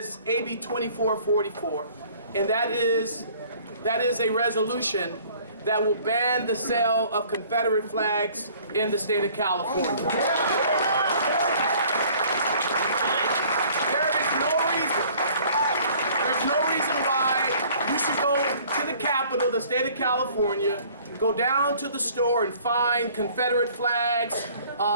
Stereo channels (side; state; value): both; inverted; correlation -0.54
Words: AB 2444. And that is a resolution that will ban the sale of Confederate flags in the state of California. There's no reason why you should go to the capital, the state of California, go down to the store and find Confederate flags,